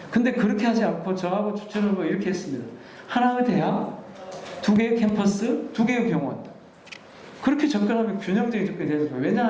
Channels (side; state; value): both; identical; correlation 1.00